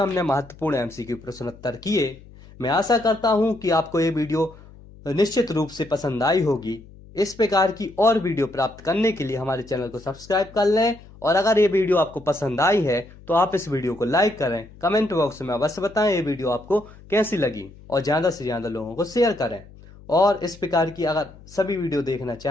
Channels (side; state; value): left; noise; hum, 21 dB below the sound